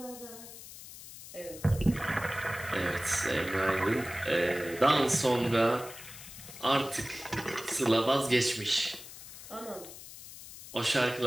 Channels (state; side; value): noise; left; hiss, 15 dB below the sound